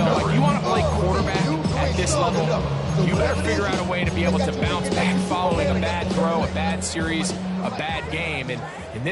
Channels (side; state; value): both; identical; correlation 1.00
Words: Like, you want to play quarterback at this level, you better figure out a way to be able to bounce back following a bad throw, a bad series, a bad game. And in